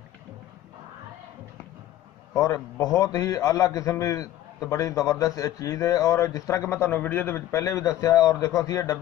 और बहुत ही आला किस्म की तो बड़ी ज़बरदस्त चीज़ है। और जिस तरह कि मैं तुहानूं वीडियो दे विच पहले भी दस्सिया, और देखो असीं ये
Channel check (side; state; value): right; quieter; 13.4 dB